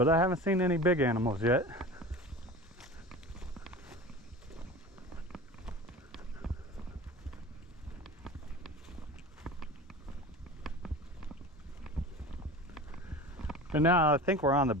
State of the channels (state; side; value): normal; both; correlation 0.35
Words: I haven't seen any big animals yet. And now I think we're on the